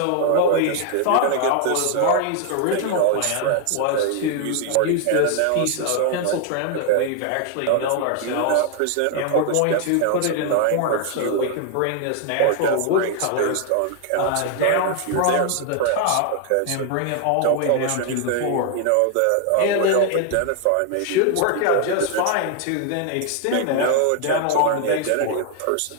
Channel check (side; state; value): both; different; correlation 0.00